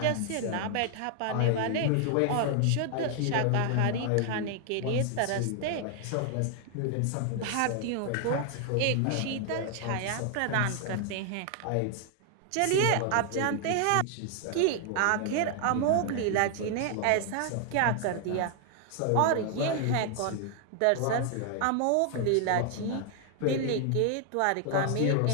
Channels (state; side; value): different; both; correlation 0.00